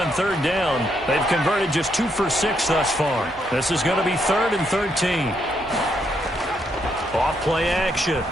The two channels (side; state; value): both; normal; correlation 0.76